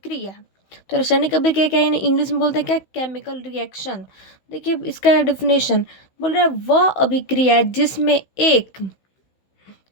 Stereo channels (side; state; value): right; late; 16 ms